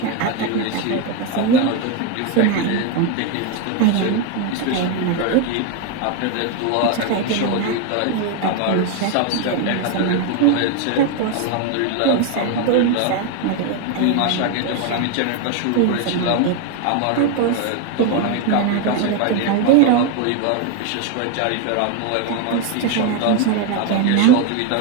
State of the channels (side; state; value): both; different; correlation 0.01